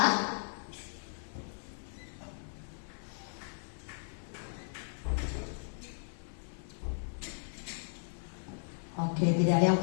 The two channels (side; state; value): right; silent; 54 dB below the other